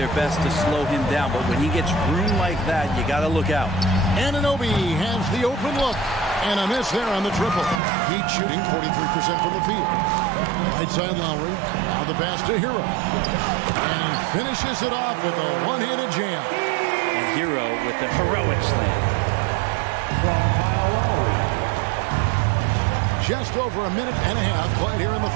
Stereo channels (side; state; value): left; drops out; at 7.8 s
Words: best to slow him down, but when he gets room like that, you got to look out. Anunoby has the open look. And a miss there on the triple. Heat shooting 43% from the field. Right side Lowry. Now the pass to Hero. And he finishes it off with a one-handed jam. And Hero with the heroic slam. Just over a minute and a half played here in the